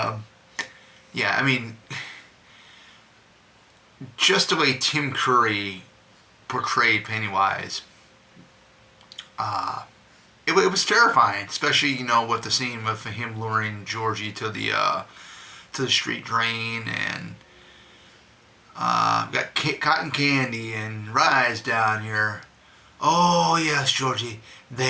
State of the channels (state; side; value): identical; both; correlation 1.00